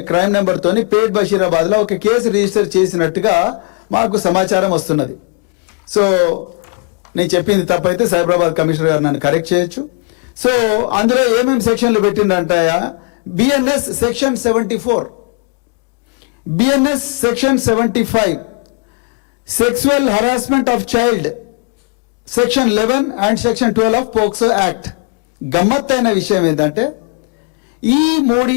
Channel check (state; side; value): quieter; right; 33.5 dB